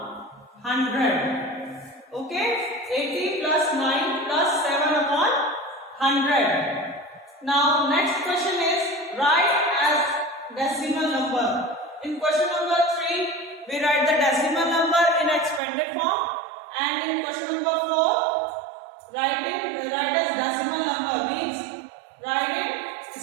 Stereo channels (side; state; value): left; drops out; at 15.6 s